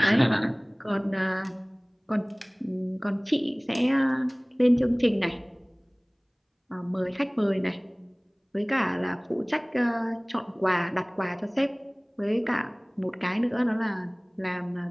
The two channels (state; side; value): identical; both; correlation 1.00